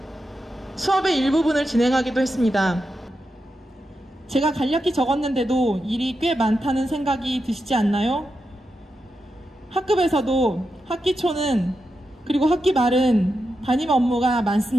수업의 일부분을 진행하기도 했습니다. 제가 간략히 적었는데도 일이 꽤 많다는 생각이 드시지 않나요? 학급에서도 학기 초는 그리고 학기 말은 담임 업무가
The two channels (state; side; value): normal; both; correlation 0.88